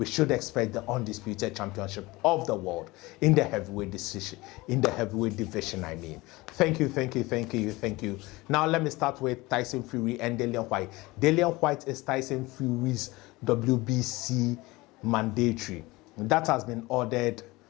should expect the Undisputed Championship of the world in the heavyweight division. I mean, thank you. Now let me start with Tyson Fury and Dillian White. Dillian White is Tyson Fury's WBC mandatory. That has been ordered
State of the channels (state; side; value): quieter; right; 21.4 dB